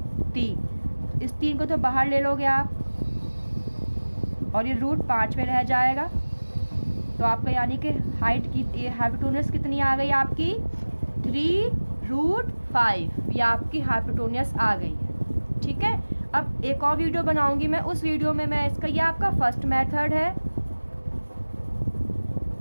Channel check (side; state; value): both; inverted; correlation -1.00